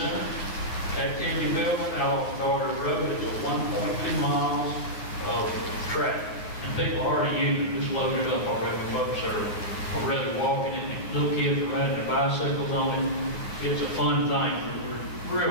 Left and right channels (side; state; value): right; late; 9.9 ms